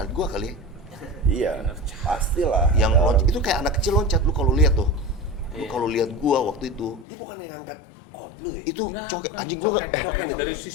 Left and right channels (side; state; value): right; drops out; at 7.1 s